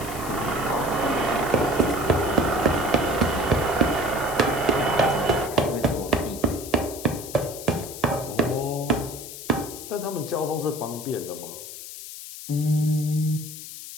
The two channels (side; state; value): left; noise; hiss, 11 dB below the sound